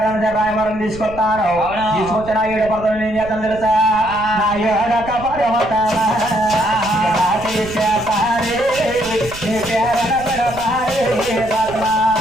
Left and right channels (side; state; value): right; noise; rumble, 15 dB below the sound